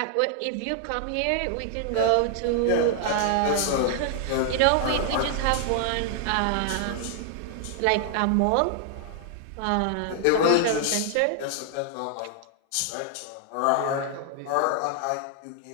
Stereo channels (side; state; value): both; different; correlation 0.00